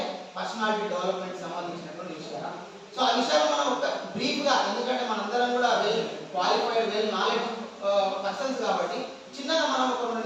పర్సనాలిటీ డెవలప్మెంట్ సంబంధించినటువంటి విషయాలు. సో ఆ విషయాలు మనం ఒక బ్రీఫ్ గా, ఎందుకంటే మనందరం కూడా well qualified, well knowledge persons కాబట్టి చిన్నగా మనం ఒక 2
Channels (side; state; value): both; identical; correlation 1.00